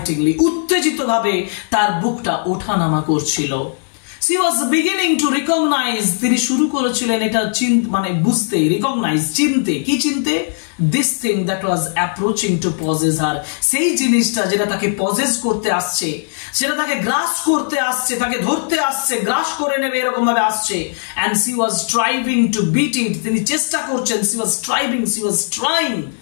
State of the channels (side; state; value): right; silent; 68 dB below the other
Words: উত্তেজিত ভাবে তার বুকটা ওঠানামা করছিল। she was beginning to recognize, তিনি শুরু করেছিলেন এটা মানে বুঝতে, রিকগনাইজ চিনতে, কি চিনতে? this thing that was approaching to possess her, সেই জিনিসটা যেটা তাকে পজেস করতে আসছে, সেটা তাকে গ্রাস করতে আসছে, তাকে ধরতে আসছে, গ্রাস করে নেবে এরকম ভাবে আসছে। and she was striving to beat it, তিনি চেষ্টা করছেন, she was trying,